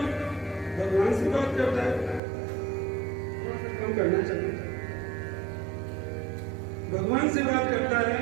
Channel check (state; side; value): drops out; left; at 2.2 s